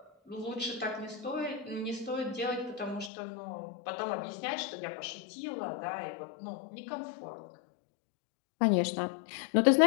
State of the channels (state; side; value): drops out; right; at 3.1 s